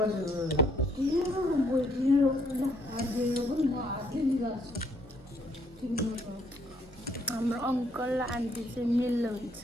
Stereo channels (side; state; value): both; normal; correlation 0.68